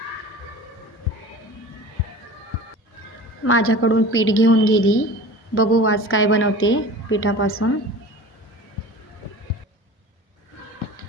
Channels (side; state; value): both; normal; correlation 0.38